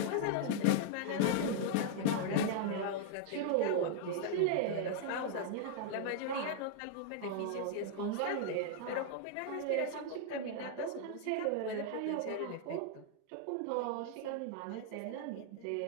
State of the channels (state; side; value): different; both; correlation -0.01